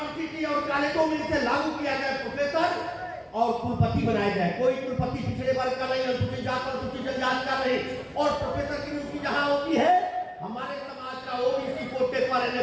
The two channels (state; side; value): identical; both; correlation 1.00